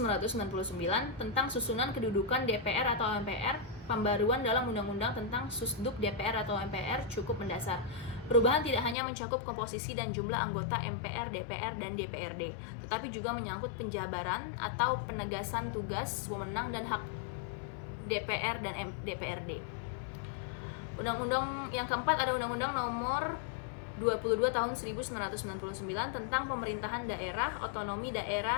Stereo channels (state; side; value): drops out; right; at 9.0 s